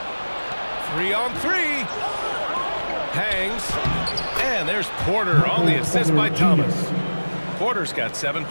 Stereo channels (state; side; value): inverted; both; correlation -1.00